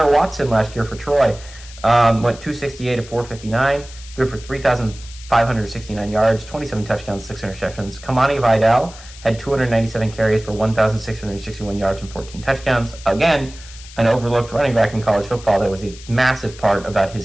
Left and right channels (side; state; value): left; noise; hiss, 18 dB below the sound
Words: Watson last year for Troy went 268-459, threw for 3,569 yards, 27 touchdowns, 6 interceptions. Kamani Vidal had 297 carries for 1,661 yards and 14 touchdowns. Again, an overlooked running back in college football that was a massive part about